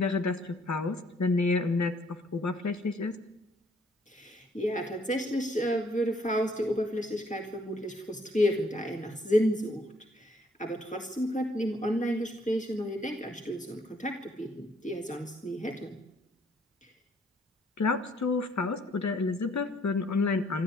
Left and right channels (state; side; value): normal; both; correlation 0.66